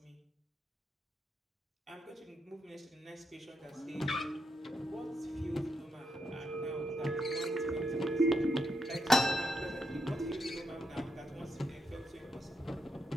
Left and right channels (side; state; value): both; normal; correlation 0.80